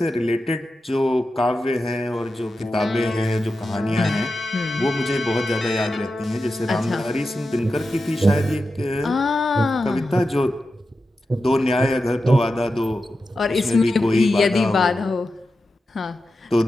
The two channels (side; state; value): both; normal; correlation 0.91